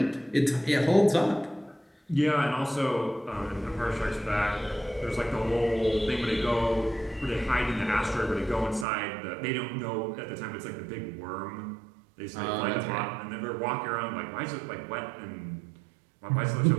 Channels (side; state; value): left; drops out; at 8.8 s